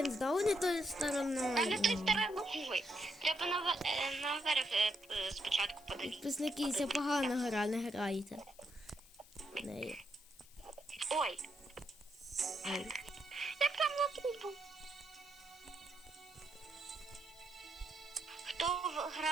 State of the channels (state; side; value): noise; left; hiss, 23 dB below the sound